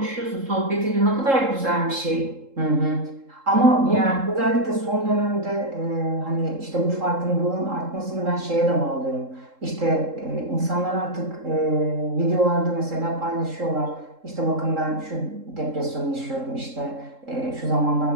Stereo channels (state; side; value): late; left; 3.7 ms